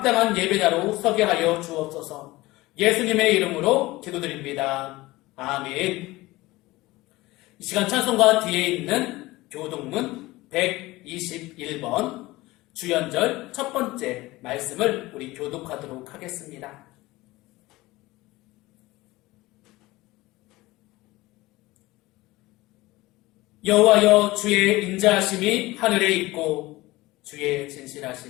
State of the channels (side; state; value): right; quieter; 19.6 dB